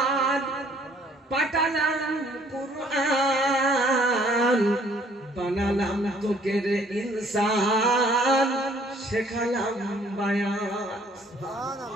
পাঠালাম কুরআন, বানালাম তোকে রে ইনসান, শেখালাম বায়ান।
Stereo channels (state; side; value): normal; both; correlation 0.60